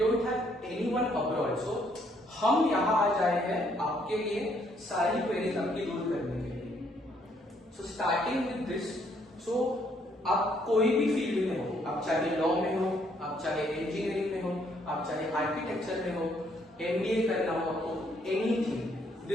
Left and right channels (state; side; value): normal; both; correlation 0.69